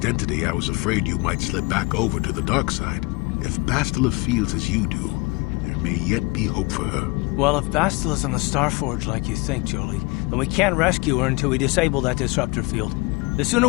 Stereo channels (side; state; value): right; quieter; 26.1 dB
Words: I was afraid you might slip back over to the dark side. If Bastila feels as you do, there may yet be hope for her. Well, if Bastila's on the Starforge like you think, Jolie, then we can't rescue her until we disable that disruptor field. The sooner